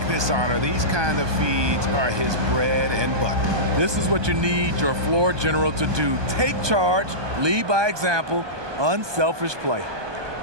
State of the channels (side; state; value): left; late; 1.2 ms